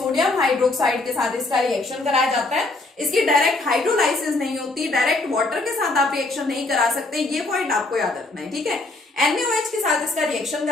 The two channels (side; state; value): right; quieter; 3.1 dB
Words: हाइड्रोक्साइड के साथ इसका रिएक्शन कराया जाता है। इसकी डायरेक्ट हाइड्रोलाइसिस नहीं होती, डायरेक्ट वाटर के साथ आप रिएक्शन नहीं करा सकते, ये पॉइंट आपको याद रखना है, ठीक है। NaOH के साथ इसका रिएक्शन